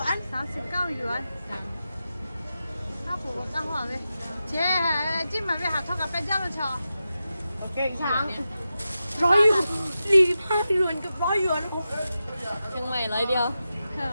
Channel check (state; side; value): inverted; both; correlation -0.91